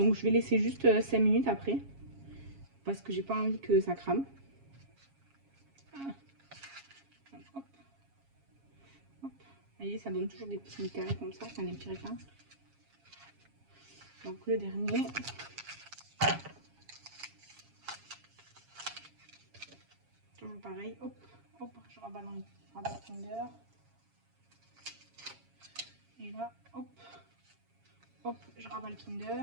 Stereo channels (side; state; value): left; late; 7.3 ms